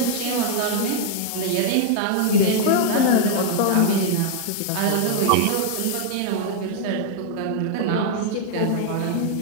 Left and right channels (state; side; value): different; both; correlation 0.00